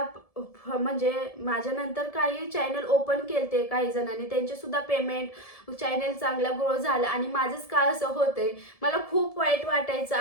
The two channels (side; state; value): right; late; 1.7 ms